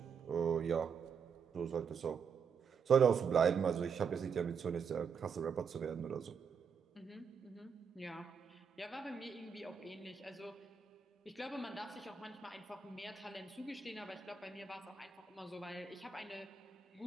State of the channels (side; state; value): left; quieter; 6.3 dB